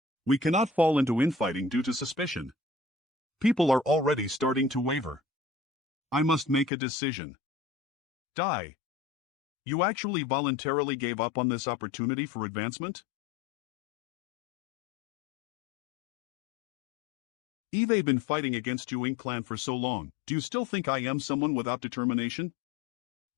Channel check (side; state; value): right; drops out; at 6.7 s